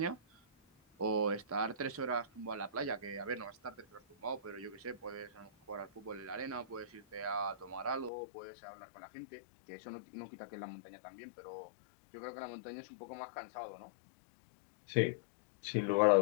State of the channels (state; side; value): drops out; right; at 8.1 s